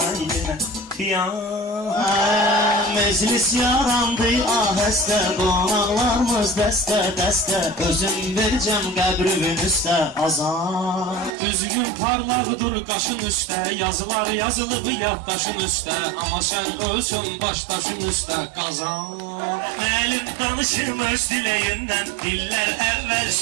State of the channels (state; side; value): drops out; left; at 11.3 s